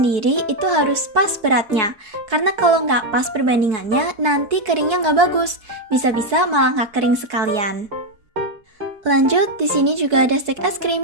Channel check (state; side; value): late; left; 4.6 ms